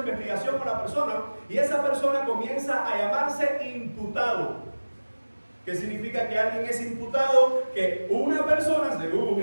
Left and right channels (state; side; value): inverted; both; correlation -1.00